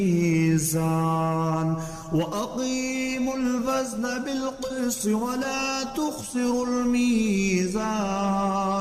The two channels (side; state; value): both; identical; correlation 1.00